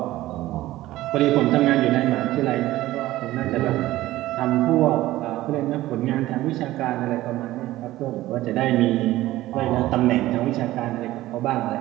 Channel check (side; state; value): left; quieter; 16.2 dB